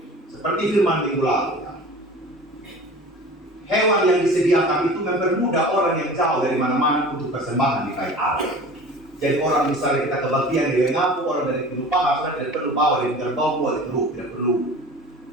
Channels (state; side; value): normal; both; correlation 0.40